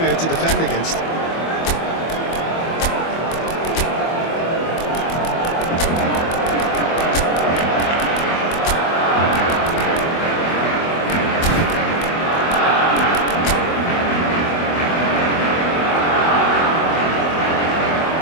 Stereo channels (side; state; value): right; late; 24 ms